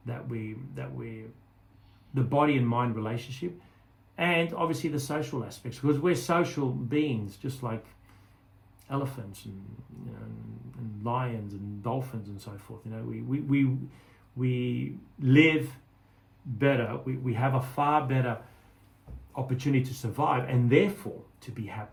that we the body and mind relationship, and obviously the social aspects, because we're social beings, just like elephants and lions and dolphins and so forth. We live better. We have a far better opportunity to survive, and therefore to be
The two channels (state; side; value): identical; both; correlation 1.00